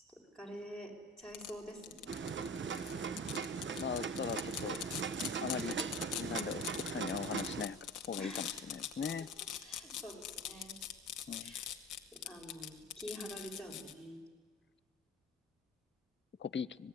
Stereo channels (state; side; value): normal; both; correlation 0.35